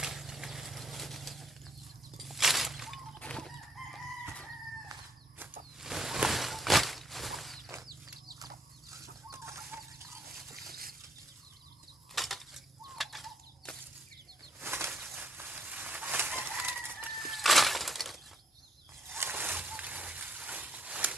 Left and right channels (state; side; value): normal; both; correlation 0.69